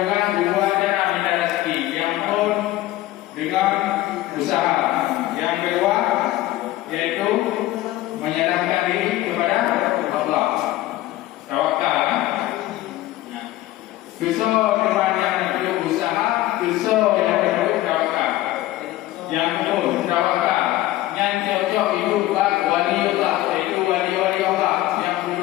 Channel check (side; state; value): right; quieter; 16.1 dB